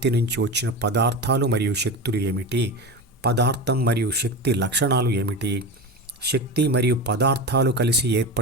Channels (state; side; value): normal; both; correlation 0.24